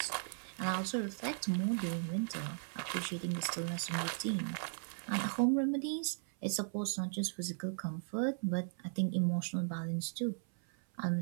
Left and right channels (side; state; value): left; silent; 53 dB below the other